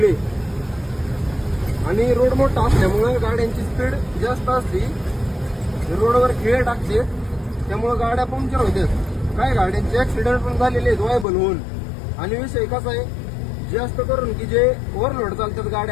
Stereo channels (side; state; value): right; drops out; at 11.2 s